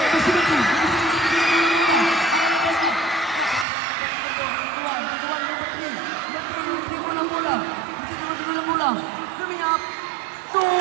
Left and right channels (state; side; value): drops out; left; at 3.7 s